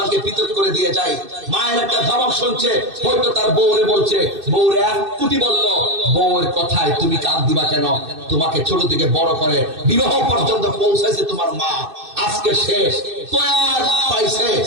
পৃথক করে দিয়ে যায়। মায়ের একটা ধমক শুনছে, হয়তো তার বউরে বলছে, বউরে 1 কোটি বললো, বউয়ের কথায় তুমি কান দিবা কেন? তোমাকে ছোট থেকে বড় করে বিবাহ পর্যন্ত পৌঁছাইছে তোমার মা, আজকে শেষ তৈয়ার পাইছে,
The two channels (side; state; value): left; late; 2.6 ms